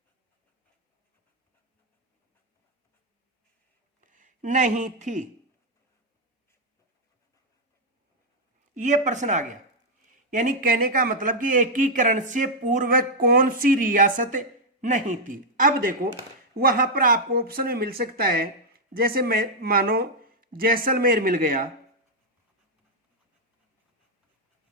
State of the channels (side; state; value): both; normal; correlation -0.02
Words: नहीं थी? यह प्रश्न आ गया। यानी कहने का मतलब कि एकीकरण से पूर्व कौन सी रियासत नहीं थी। अब देखो वहां पर आपको ऑप्शन में मिल सकता है, जैसे मैं मानो जैसलमेर मिल गया,